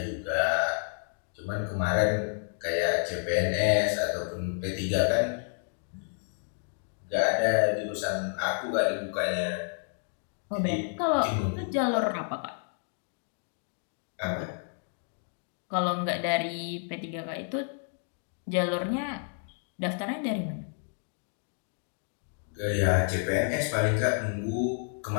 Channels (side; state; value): right; silent; 58 dB below the other